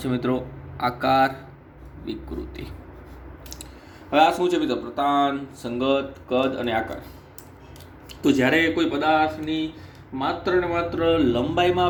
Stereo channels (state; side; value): identical; both; correlation 1.00